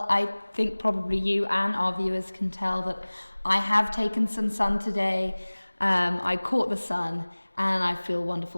I think probably you and our viewers can tell that I have taken some sun today. I caught the sun and I feel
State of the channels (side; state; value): both; inverted; correlation -1.00